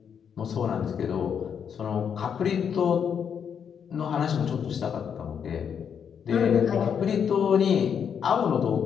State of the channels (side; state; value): right; quieter; 7.6 dB